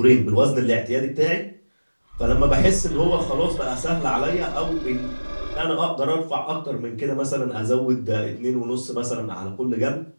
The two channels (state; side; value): inverted; both; correlation -1.00